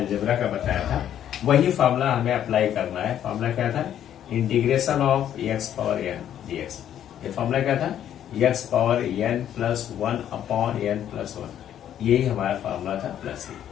का बताया था, वही फार्मूला हमें अप्लाई करना है। फार्मूला क्या था, integration of x power n dx। ये फार्मूला क्या था, x power N plus 1 upon N plus 1, यही हमारा फार्मूला था प्लस ही।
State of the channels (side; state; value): right; quieter; 10.5 dB